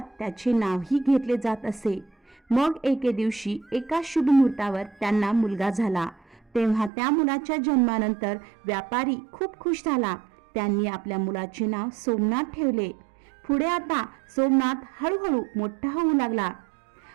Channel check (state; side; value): drops out; left; at 6.9 s